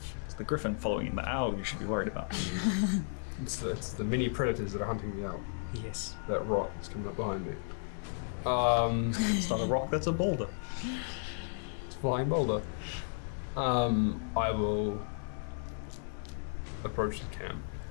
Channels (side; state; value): right; silent; digital silence